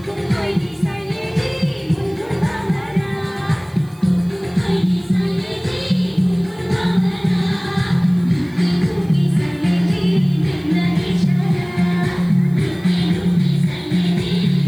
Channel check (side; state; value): right; noise; hiss, 28 dB below the sound